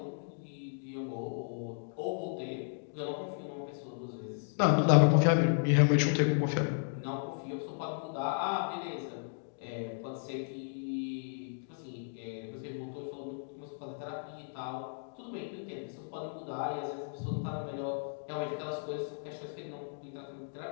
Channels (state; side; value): silent; right; digital silence